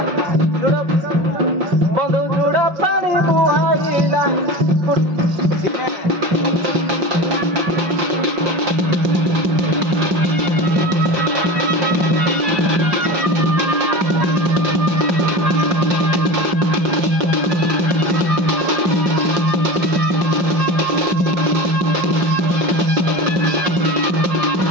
बंधु जुड़ा पानी बुआईला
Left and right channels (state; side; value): late; left; 5.6 ms